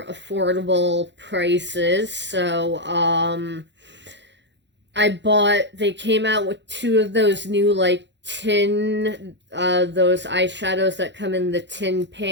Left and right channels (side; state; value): left; late; 0.52 ms